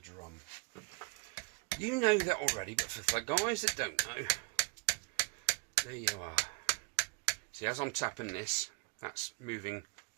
You know that already, but for the guys that don't know, there you are. See, as I'm tapping this, that's moving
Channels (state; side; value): quieter; left; 31.5 dB